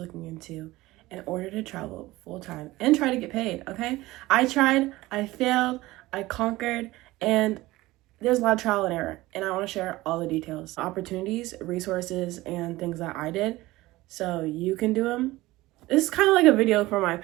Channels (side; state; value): left; quieter; 18.7 dB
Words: into in order to travel full-time and try to get paid, okay? I tried, I failed, I conquered, and there's a lot of trial and error, and I want to share all the details, opportunities, resources, and things that I did so you can do them. This is kind of like a video for my